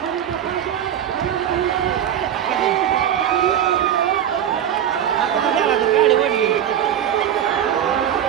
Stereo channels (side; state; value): left; quieter; 10.0 dB